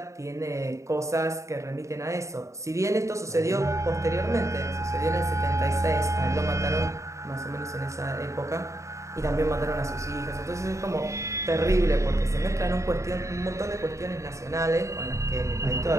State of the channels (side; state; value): left; late; 0.15 ms